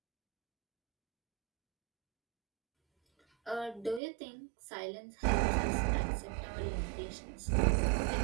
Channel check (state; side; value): drops out; left; at 4.0 s